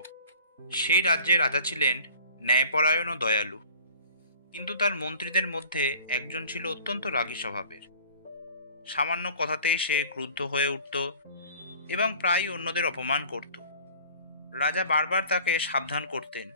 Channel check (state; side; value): inverted; both; correlation -0.47